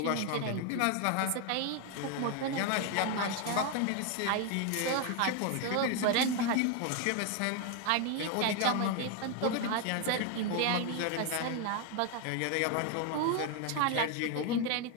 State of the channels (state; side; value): different; both; correlation 0.01